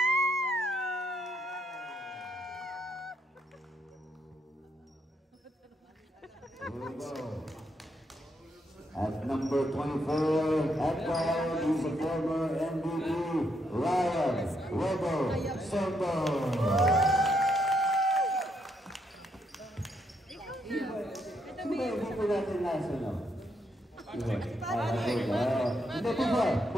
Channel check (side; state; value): both; normal; correlation 0.76